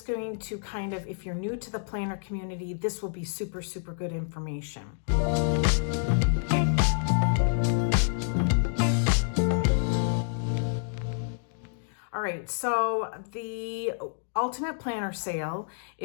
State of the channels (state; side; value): silent; right; digital silence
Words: going to kind of, if you're new to the planner community, this will be super, super good information. All right, so the Ultimate Planner sale